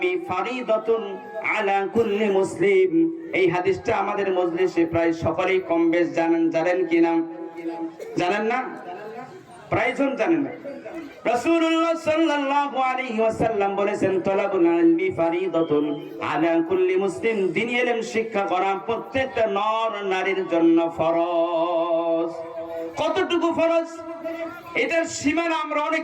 ফারিদাতুন আলা কুল্লি মুসলিম এই হাদিসটা আমাদের মজলিসে প্রায় সকলেই কম বেশ জানেন কিনা জানেন না প্রায়জন জানেন না রাসূলুল্লাহ সাল্লাল্লাহু আলাইহি ওয়াসাল্লাম বলেছেন তলাবুল ইলমি ফারিদাতুন আলা কুল্লি মুসলিম দ্বীনি ইলম শিক্ষা করা প্রত্যেকটা নর নারীর জন্য ফরজ কতটুকু ফরজ এটার সীমানা আমরা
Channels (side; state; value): both; identical; correlation 1.00